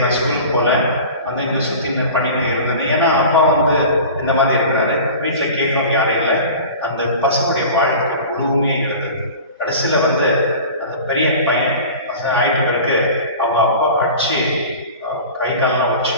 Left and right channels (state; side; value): inverted; both; correlation -0.38